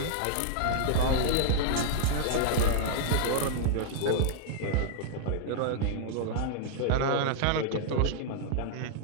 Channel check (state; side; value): different; both; correlation -0.01